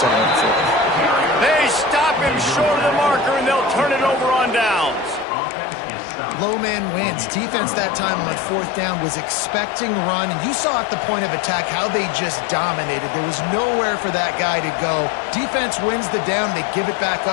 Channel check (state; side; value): drops out; right; at 5.2 s